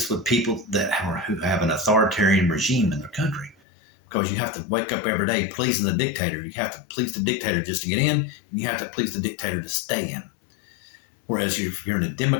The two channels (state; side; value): drops out; right; at 3.6 s